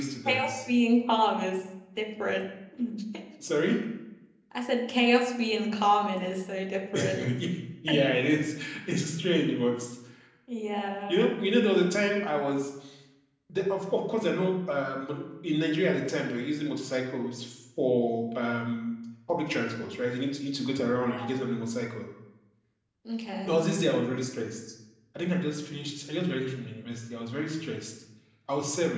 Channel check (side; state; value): both; identical; correlation 1.00